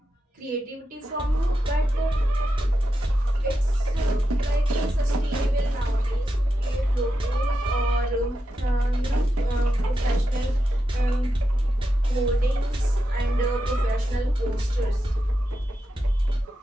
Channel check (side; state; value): both; normal; correlation 0.88